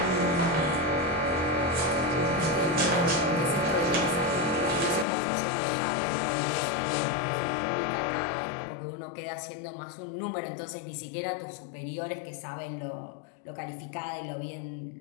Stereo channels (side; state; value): right; drops out; at 5.1 s